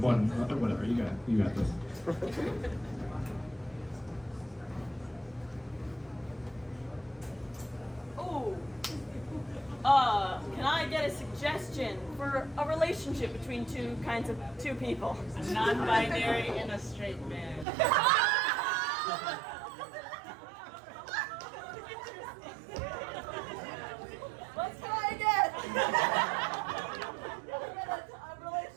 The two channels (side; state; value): left; drops out; at 17.7 s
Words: 1, whatever, you got this. Can I get a suggestion for a relationship between two people? Non-binary and a straight man. Let's try again. A